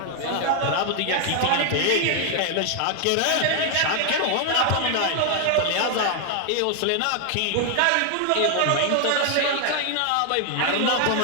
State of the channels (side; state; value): both; different; correlation 0.00